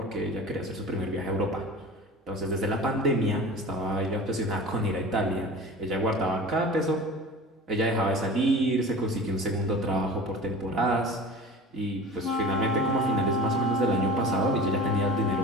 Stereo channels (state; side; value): normal; both; correlation 0.37